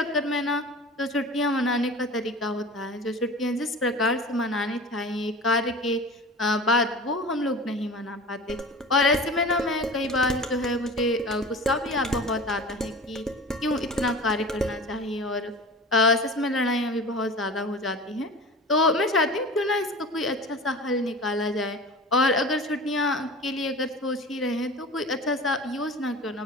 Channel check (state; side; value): normal; both; correlation 0.36